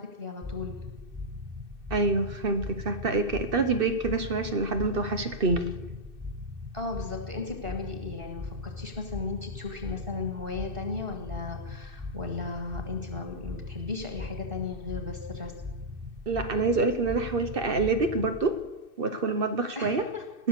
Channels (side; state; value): left; late; 2.6 ms